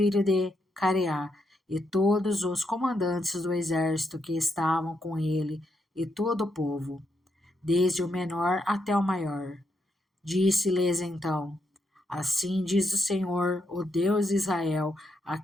de Careá, e todos os comandantes do exército que estavam com ele, e todo o povo, desde o menor até o maior. Disse-lhes então: Assim diz o Senhor, o Deus de Israel, a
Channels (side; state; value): both; normal; correlation 0.80